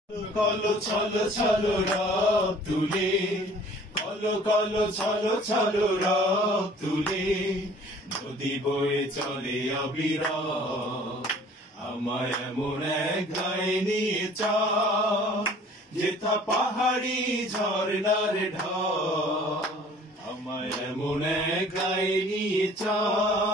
কলো ছলো ছলো রব তুলে, কলো কলো ছলো ছলো রব তুলে, নদী বয়ে চলে অবিরাম। আমায় এমন এক গায়ে নিয়ে চল, যেথা পাহাড়ি ঝর্ণার ঢল। আমায় এমন এক গায়ে নিয়ে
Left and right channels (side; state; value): both; normal; correlation 0.51